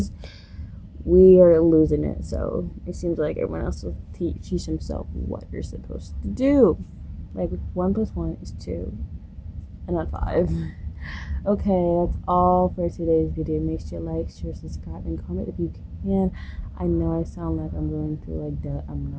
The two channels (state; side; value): identical; both; correlation 1.00